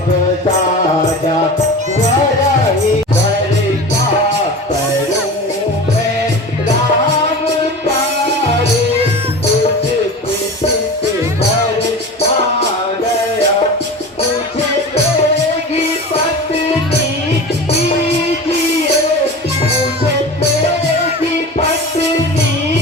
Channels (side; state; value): both; normal; correlation 0.33